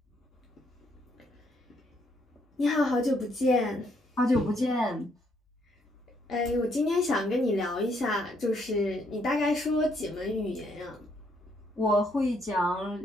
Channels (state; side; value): normal; both; correlation 0.71